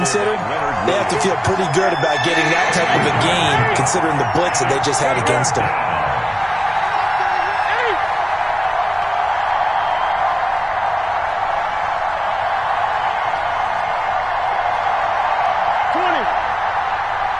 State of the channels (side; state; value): both; identical; correlation 1.00